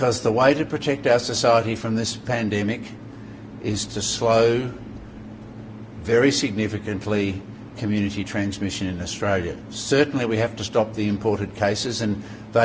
the way to protect our society from this pandemic is to slow very significantly community transmission in Australia. Certainly we have to stop the imported cases and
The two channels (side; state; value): both; identical; correlation 1.00